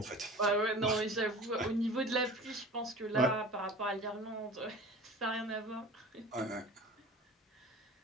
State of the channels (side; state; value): both; normal; correlation 0.39